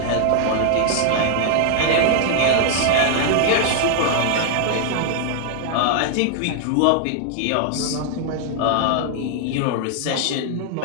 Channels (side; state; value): both; different; correlation 0.00